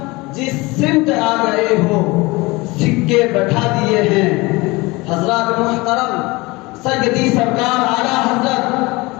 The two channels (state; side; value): quieter; right; 23.2 dB